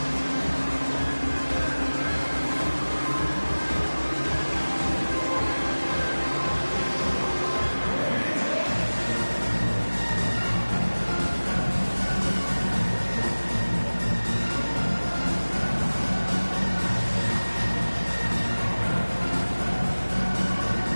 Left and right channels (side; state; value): both; inverted; correlation -1.00